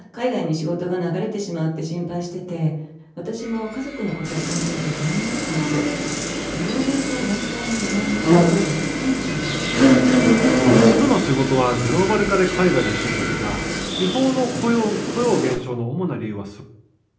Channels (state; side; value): identical; both; correlation 1.00